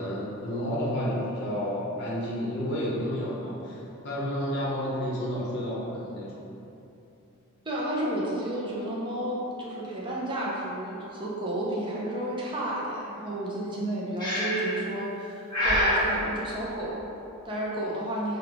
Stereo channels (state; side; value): normal; both; correlation 0.22